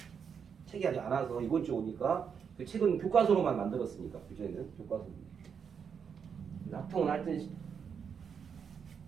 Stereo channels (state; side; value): quieter; left; 6.9 dB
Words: 책이 아직 안 와서 이번 주 오니까 그 책은 교과서로만 만들었으니까 그전에는 교과서. 확통은 하여튼